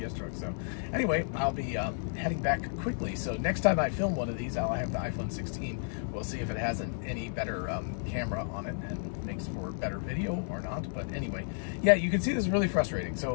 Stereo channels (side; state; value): right; silent; 56 dB below the other